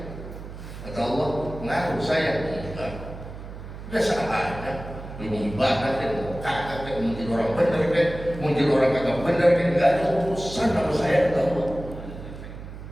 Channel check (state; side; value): noise; right; hum, 12 dB below the sound